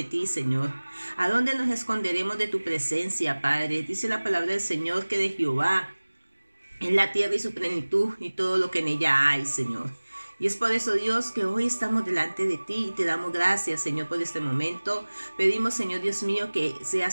ti, Señor? ¿A dónde nos esconderemos de tu presencia, Padre? Dice la palabra del Señor que de Jehová es la tierra y su plenitud y todo lo que en ella hay, Señor. Y es por eso, Dios, que hoy estamos delante de ti y te damos gracias, Señor, por este momento. Pedimos, Señor Dios mío, que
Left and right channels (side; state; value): both; inverted; correlation -1.00